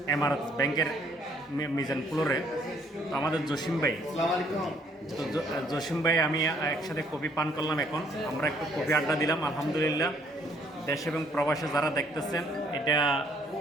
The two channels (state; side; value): normal; both; correlation 0.65